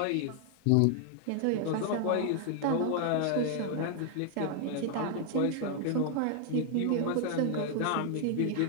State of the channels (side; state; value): both; different; correlation 0.00